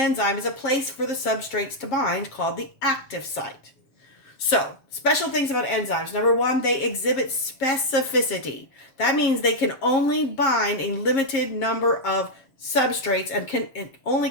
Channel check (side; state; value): right; late; 7.4 ms